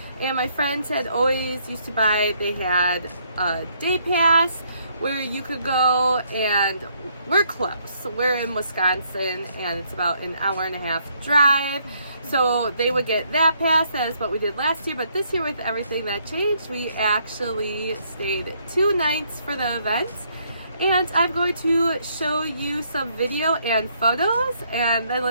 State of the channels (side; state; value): both; inverted; correlation -0.70